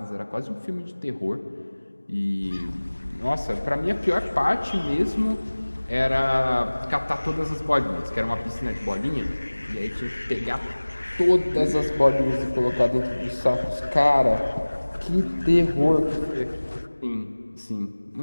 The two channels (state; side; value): inverted; both; correlation -1.00